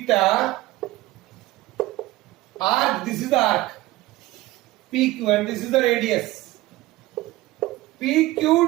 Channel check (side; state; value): left; quieter; 17.9 dB